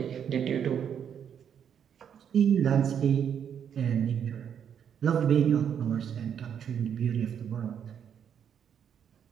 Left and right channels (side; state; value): left; quieter; 8.3 dB